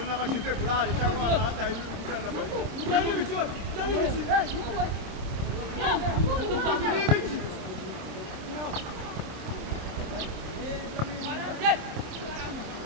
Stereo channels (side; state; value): left; late; 26 ms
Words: n'abashize burari cyangwa abantu hataye n'uruganda